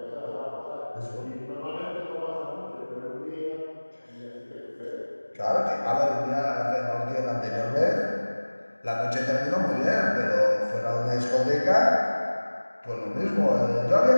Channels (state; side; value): inverted; both; correlation -1.00